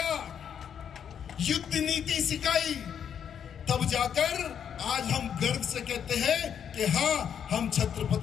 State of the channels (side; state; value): right; quieter; 8.3 dB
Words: युद्ध नीति सिखाई। तब जाकर आज हम गर्व से कहते हैं कि हाँ, हम